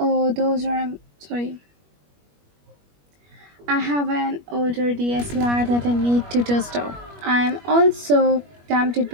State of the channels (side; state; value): left; late; 21 ms